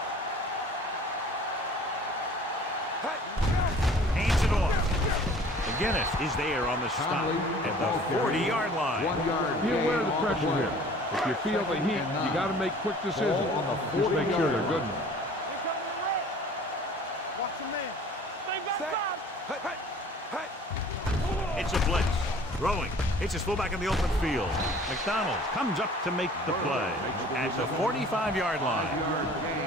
Hands it off. McGinnis is there on the stop at the 40-yard line. 1 yard. Be aware of the pressure here. If you feel the heat, you got to make quick decisions. Just make sure they're good enough. Watch the man. Set. It's a blitz. Throwing. It's his fullback in the open field. McDonald comes up to make the play at the 45-yard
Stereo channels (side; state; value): both; normal; correlation 0.49